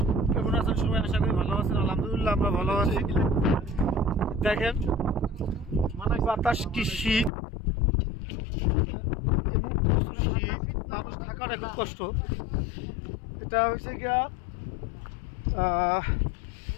কেমন আছেন সবাই? আশা করি ভালো আছেন। আলহামদুলিল্লাহ আমরা ভালো আছি। দেখেন বাতাস কি শীত, প্রচুর শীত, মানুষ থাকার খুব কষ্ট। এটা হয়েছে গিয়া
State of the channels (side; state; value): right; drops out; at 7.3 s